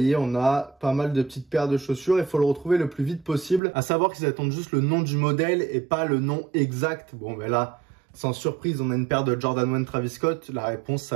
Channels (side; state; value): left; drops out; at 3.6 s